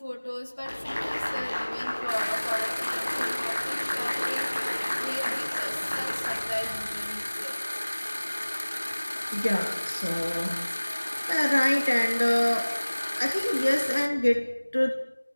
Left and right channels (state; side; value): inverted; both; correlation -1.00